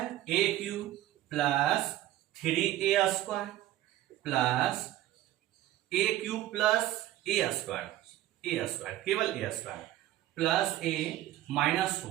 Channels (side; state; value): left; quieter; 14.3 dB